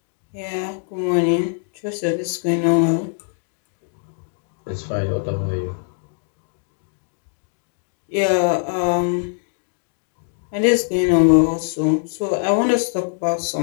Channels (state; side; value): silent; right; digital silence